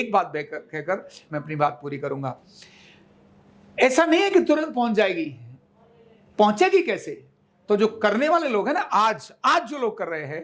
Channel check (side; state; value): both; identical; correlation 1.00